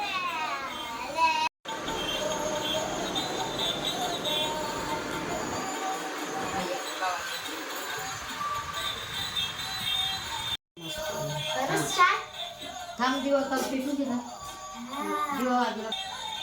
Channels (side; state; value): both; identical; correlation 1.00